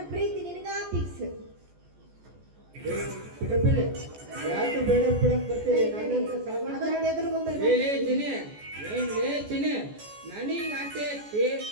ಪ್ರೀತಿ ನಿನಗ ಫಿಕ್ಸ್. ಬಿಡಬೇಡಿ, ಯಾಕೆ ಬೇಡ ಬಿಡಕ್ ಬರ್ತೀರಿ? ನನ್ನಂತ ಸಾಮಾನ್ಯ ಅದನ್ನ ಎದುರುಗೊಂಡು ಚಿನಿ ನನಗೆ ಆಸೆ ಐತಿ,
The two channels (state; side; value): late; left; 14 ms